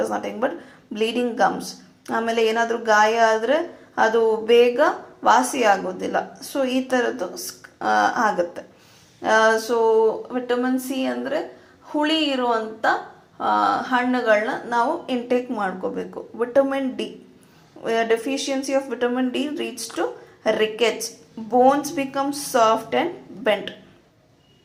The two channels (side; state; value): both; identical; correlation 1.00